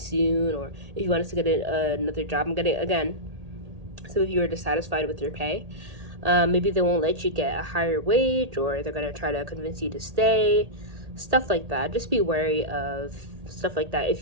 or if you want us to get another job. I'm getting, again, some of you are dissatisfied with your pay. Maybe they won't let you get a higher wage, or they're gonna try to convince you to stay. Stuff like that. Just be wary of stuff like that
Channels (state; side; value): late; left; 1.8 ms